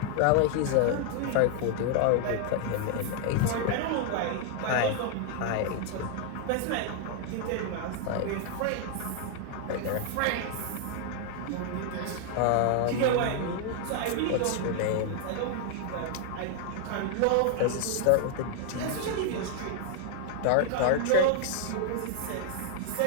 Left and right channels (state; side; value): different; both; correlation 0.00